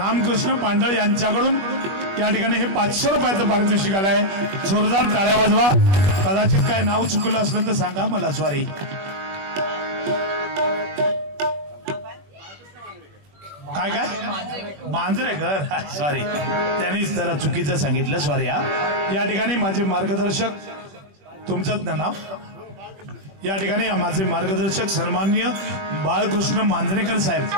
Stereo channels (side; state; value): left; late; 21 ms